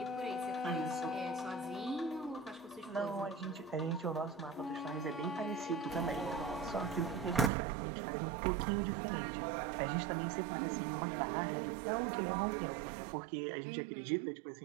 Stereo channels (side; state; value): left; drops out; at 7.5 s